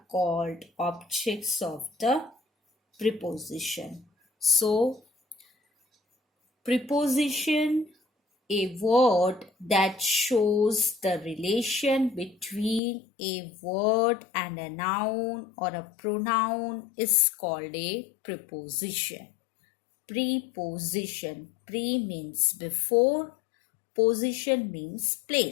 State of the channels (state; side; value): drops out; right; at 12.8 s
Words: called objects of the preposition. So, preposition, a word that shows the relation between a word and a noun or a pronoun is called a preposition. Preposition. Pre means before. Position means